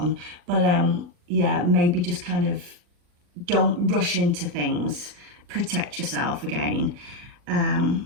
but yeah, maybe just kind of don't rush into things, protect yourself again.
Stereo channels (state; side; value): late; left; 40 ms